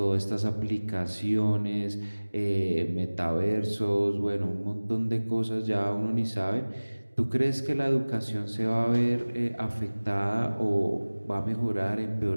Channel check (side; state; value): both; inverted; correlation -1.00